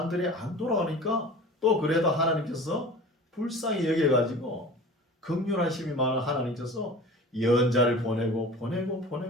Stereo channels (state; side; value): normal; both; correlation 0.39